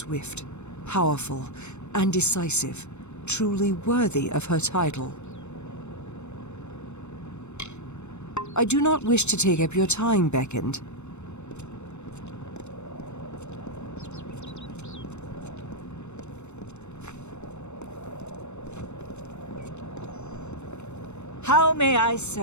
powerful, and decisive, truly worthy of her title. I do not wish to take up your time, Beckoned. How may I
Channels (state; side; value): late; right; 0.82 ms